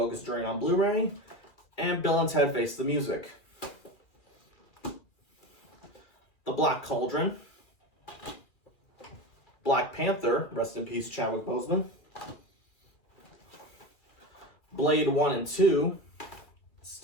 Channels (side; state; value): right; late; 2.4 ms